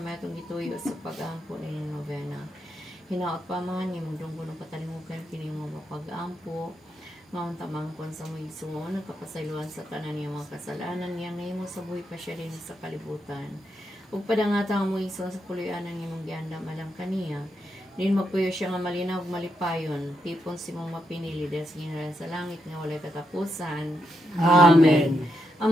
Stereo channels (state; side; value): normal; both; correlation 0.82